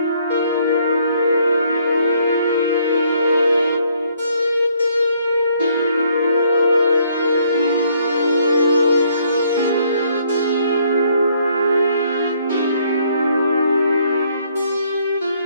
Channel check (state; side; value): inverted; both; correlation -0.67